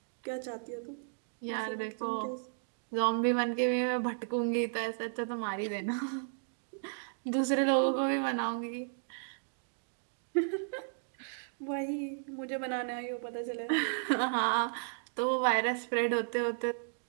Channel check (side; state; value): left; silent; digital silence